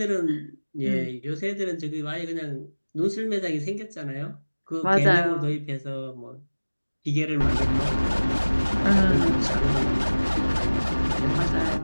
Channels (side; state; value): both; inverted; correlation -1.00